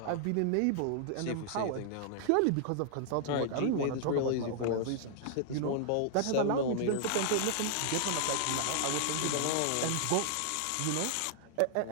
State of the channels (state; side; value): different; both; correlation -0.01